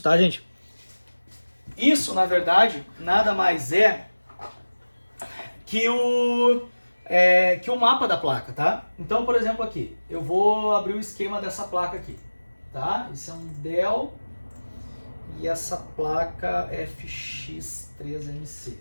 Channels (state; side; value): inverted; both; correlation -1.00